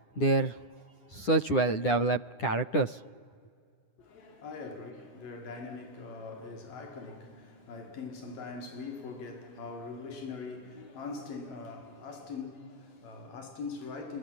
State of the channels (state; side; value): late; right; 9.9 ms